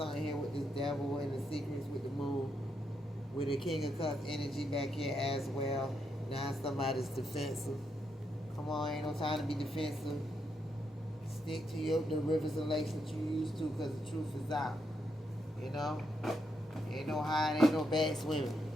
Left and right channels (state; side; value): normal; both; correlation 0.80